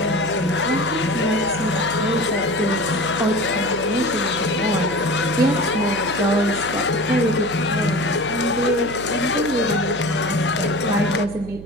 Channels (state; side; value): noise; right; hum, 14 dB below the sound